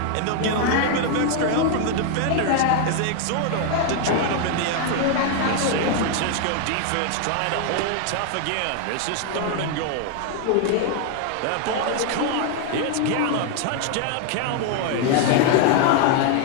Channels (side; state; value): both; different; correlation 0.00